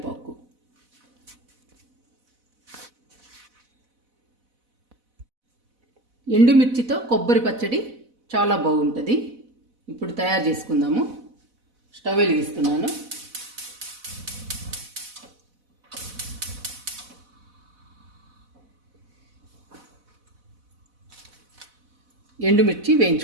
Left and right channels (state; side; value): late; left; 4.0 ms